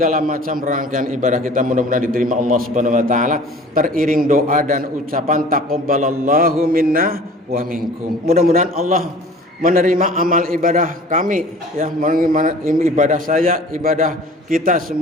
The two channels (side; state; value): both; normal; correlation 0.46